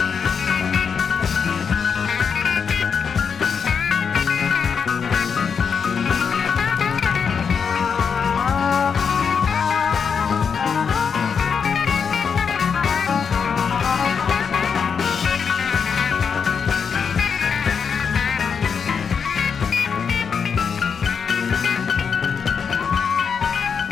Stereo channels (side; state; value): right; quieter; 6.4 dB